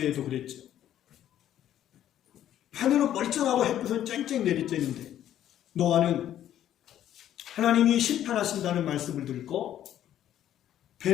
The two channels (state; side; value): quieter; right; 11.4 dB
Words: 그랬죠. 하늘은 멀쩡하고 햇빛은 쨍쨍 내리쬐는데 노아는 하나님이 심판하신다는 말씀을 듣고